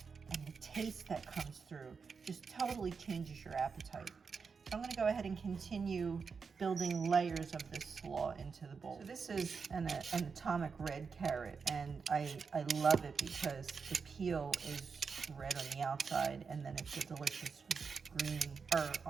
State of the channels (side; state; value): left; quieter; 5.4 dB